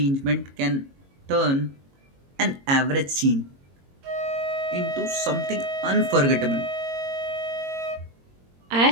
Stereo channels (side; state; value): left; late; 22 ms